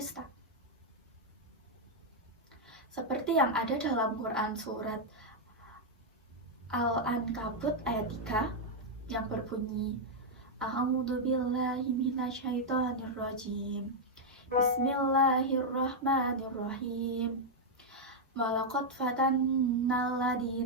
Seperti yang ada dalam Quran surat Al-Ankabut ayat 3 yang berbunyi, A'udzu billahi minasyaitonir rajim. Bismillahirrahmanirrahim. Walaqad fatannal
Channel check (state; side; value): normal; both; correlation -0.03